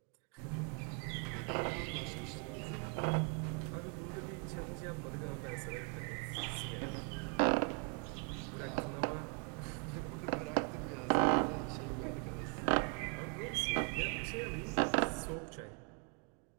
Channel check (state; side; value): quieter; left; 36.7 dB